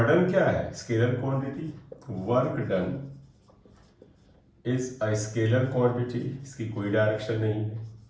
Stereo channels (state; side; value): identical; both; correlation 1.00